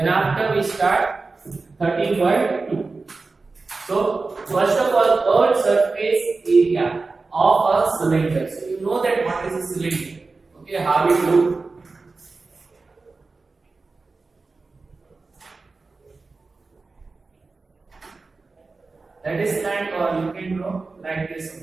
after we start 13.2. So first of all, third surface area of a cylinder. So you know that what is a cylinder. Okay, how it looks. That is like, or you can draw like this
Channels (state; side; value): quieter; left; 3.9 dB